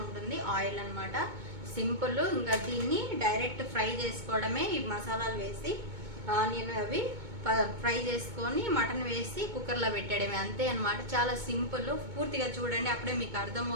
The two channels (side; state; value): left; late; 2.2 ms